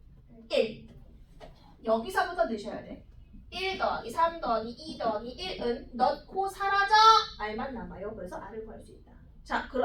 1. 여기서부터 넣으셔야 돼. 1 더하기 3 더하기 2 더하기 1은 넣고 사라져. r만 남아요. 그래서 r을 구할 수 있다. 자,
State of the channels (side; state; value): both; identical; correlation 1.00